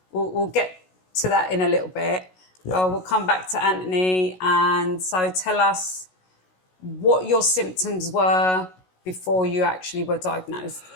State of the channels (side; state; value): right; late; 16 ms